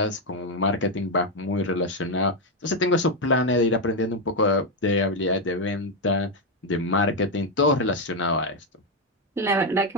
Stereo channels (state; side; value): normal; both; correlation 0.05